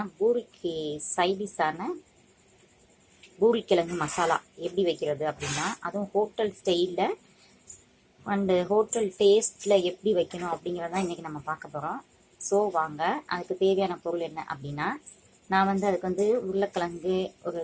பூரிக்கு சைடிஷான பூரிக்கிழங்கு மசாலா எப்படி வைக்கிறது அப்படின்னா, அதுவும் ஹோட்டல் ஸ்டைலில் அண்டு ஹோட்டல் டேஸ்ட்டில் எப்படி வைக்கணும் அப்படிங்கிறதான் இன்றைக்கி நம்ம பார்க்க போகிறோம். ஸோ வாங்க, அதுக்கு தேவையான பொருள் என்ன அப்படின்னா, நான் வந்து அதுக்கு வந்து உருளைக்கிழங்கு ஒரு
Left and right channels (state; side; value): identical; both; correlation 1.00